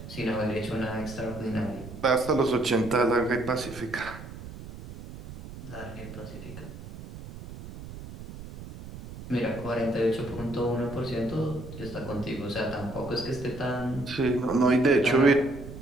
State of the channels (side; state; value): right; noise; rumble, 13 dB below the sound